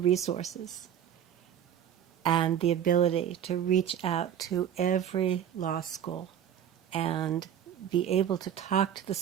and the ability to reach out to every law school and be able to talk to the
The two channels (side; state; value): left; quieter; 9.6 dB